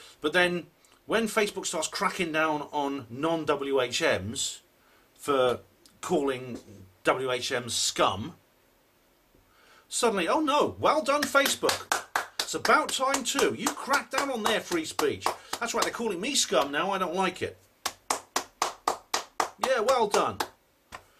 But then when Facebook starts cracking down on non-WHMs for calling WHMs scum, suddenly, oh no, well done Facebook. It's about time too. You crack down on their free speech. That's right, they're calling me scum now, I don't like it. Yeah, well done.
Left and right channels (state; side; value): identical; both; correlation 1.00